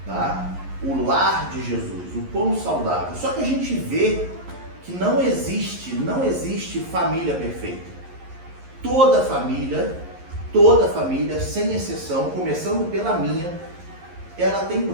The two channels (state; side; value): late; left; 11 ms